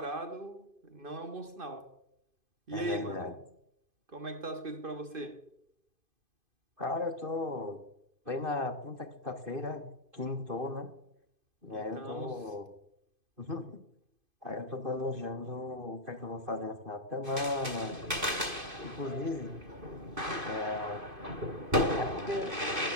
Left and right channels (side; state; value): left; late; 2.5 ms